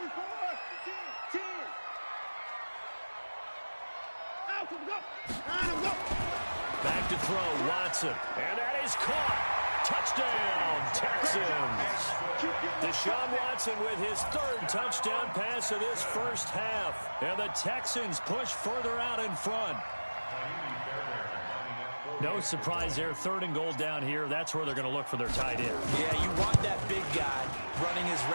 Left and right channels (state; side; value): inverted; both; correlation -1.00